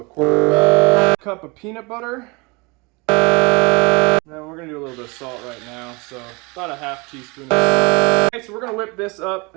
a quarter cup of peanut butter. And then we're going to do a little bit of salt right now, so about a half teaspoon. Okay, so we're going to whip this up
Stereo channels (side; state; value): left; quieter; 27.4 dB